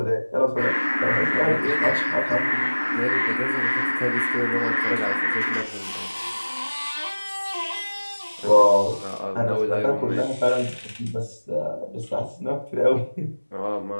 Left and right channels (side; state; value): both; inverted; correlation -1.00